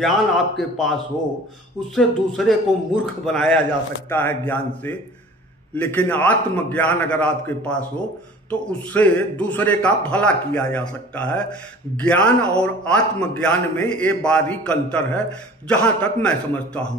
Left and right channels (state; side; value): normal; both; correlation 0.45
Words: आपके पास हो, उससे दूसरे को मूर्ख बनाया जा सकता है ज्ञान से। लेकिन आत्मज्ञान अगर आपके पास हो तो उससे दूसरे का भला किया जा सकता है। ज्ञान और आत्मज्ञान में ये बारीक अंतर है, जहां तक मैं समझता हूं।